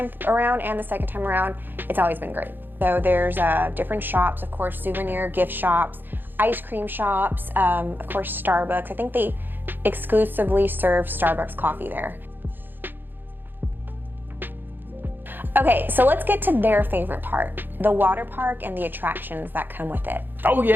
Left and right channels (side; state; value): left; late; 0.094 ms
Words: around and the second time around, it's always been great. So there's different shops, of course, souvenir gift shops, ice cream shops, of course, Starbucks. I think they exclusively serve Starbucks coffee there. Okay, so let's get to their favorite part, the water park and the attractions that come with it. Oh